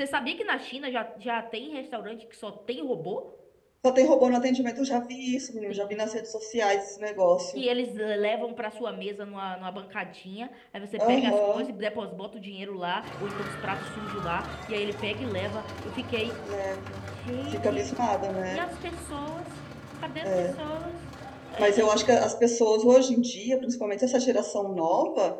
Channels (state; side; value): identical; both; correlation 1.00